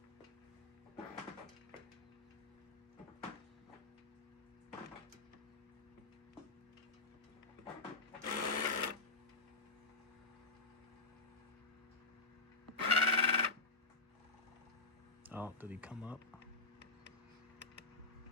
Oh, did he come up?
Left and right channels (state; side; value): quieter; right; 3.5 dB